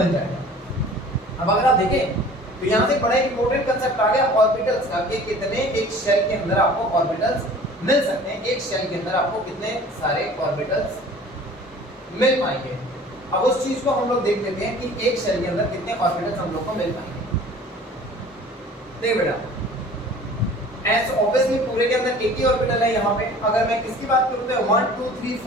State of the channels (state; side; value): normal; both; correlation 0.46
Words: जाएगा। अब अगर आप देखें तो यहाँ से बड़ा इंपॉर्टेंट कंसेप्ट आ गया ऑर्बिटल्स का, कि कितने एक शेल के अंदर आपको ऑर्बिटल्स मिल सकते हैं, एक शेल के अंदर आपको कितने सारे ऑर्बिटल्स मिल पाएंगे। अब उस चीज को हम लोग देख लेते हैं कि एक शेल के अंदर कितने ऑर्बिटल्स हम लोग को मिल पाएंगे। देखिए बेटा, एस ऑब्वियसली पूरे के अंदर एक ही ऑर्बिटल है यहाँ पे। अगर मैं किसकी बात करूँ तो 1 2 3